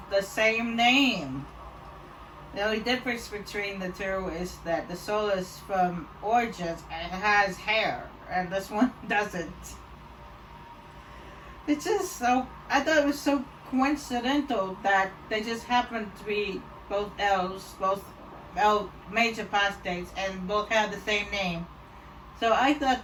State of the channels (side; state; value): both; identical; correlation 1.00